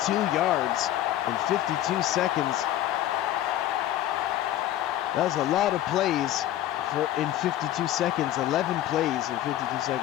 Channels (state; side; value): quieter; right; 13.0 dB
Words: yards in 52 seconds. That's a lot of plays in 52 seconds. 11 plays in 52